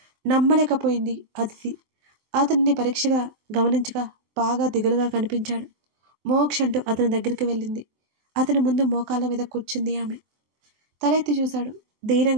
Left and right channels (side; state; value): left; late; 23 ms